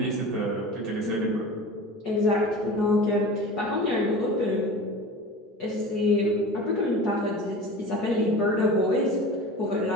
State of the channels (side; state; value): both; normal; correlation 0.35